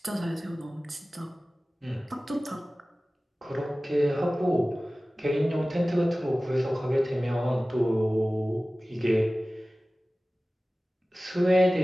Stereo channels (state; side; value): normal; both; correlation 0.97